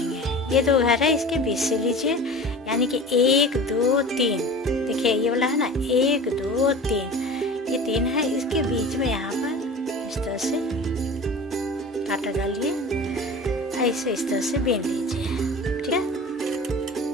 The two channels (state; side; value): normal; both; correlation 0.37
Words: ये 2 घर है, इसके बीच से लीजिए, यानी कि 1 2 3। देखिए ये वाला है ना, 1 2 3, ये 3 है, इसके बीच में यहाँ पर इस तरह से कांटा डालिए, ऐसे इस तरह से बीन लीजिए। ठीक है,